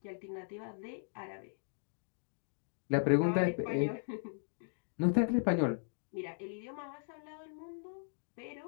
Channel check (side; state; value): right; silent; digital silence